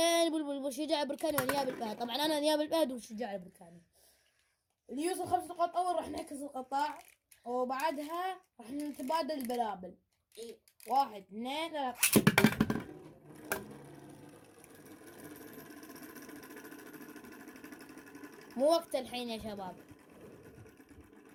بلبل وشجاع البركاني ونياب الفهد. طبعا انا نياب الفهد وشجاع البركاني. اللي يوصل 5 نقاط اول راح نعكس القطاع، وبعدها راح نتبادل البلابل. 1 2 3. مو وقت الحين يا شباب.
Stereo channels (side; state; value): both; identical; correlation 1.00